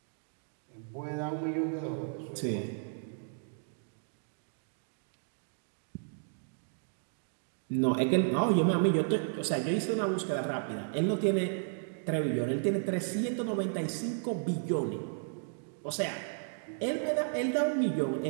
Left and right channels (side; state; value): left; silent; digital silence